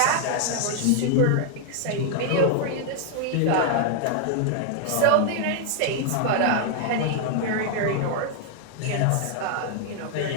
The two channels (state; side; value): different; both; correlation 0.00